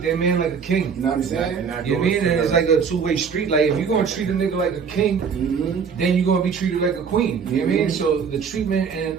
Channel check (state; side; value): quieter; left; 6.3 dB